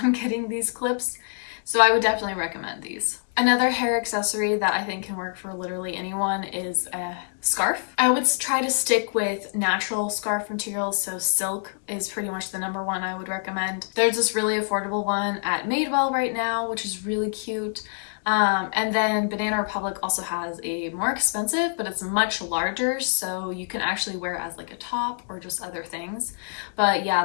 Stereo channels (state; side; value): silent; right; digital silence